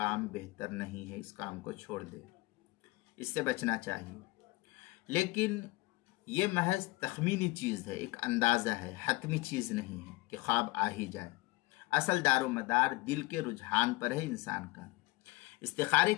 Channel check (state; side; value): quieter; right; 21.9 dB